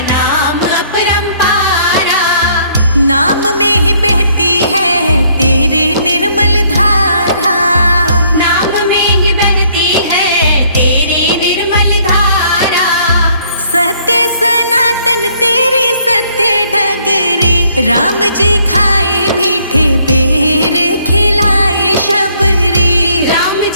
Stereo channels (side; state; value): both; inverted; correlation -0.65